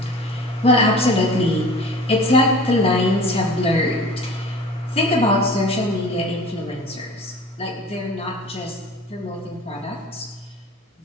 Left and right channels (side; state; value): both; normal; correlation 0.42